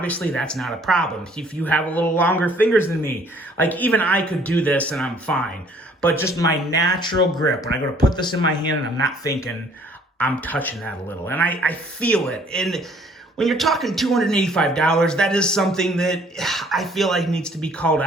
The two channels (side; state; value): both; normal; correlation 0.59